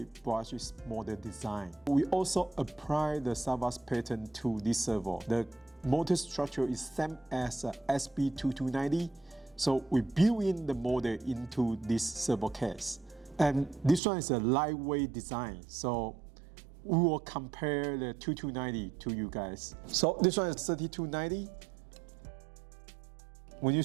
brushless model design. We also apply the SAVOX pattern to this servo. The motor structure is same as SB-3290. So we build in the model into this servo case. And this one is a lightweight design. So we will compare the 2290 to you guys. So this one is 3290. When you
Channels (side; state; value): left; drops out; at 14.0 s